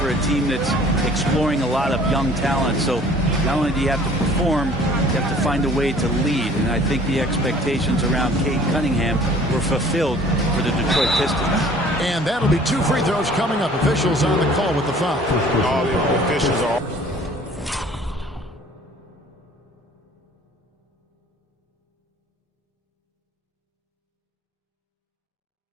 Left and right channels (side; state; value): both; normal; correlation 0.52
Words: a team that's exploring a lot of young talent. So not only do you have to perform, you have to find a way to lead. And I think the expectations around Cade Cunningham were fulfilled for the Detroit Pistons. And that'll be 2 free throws coming up. Officials on the call with the foul. All the officials are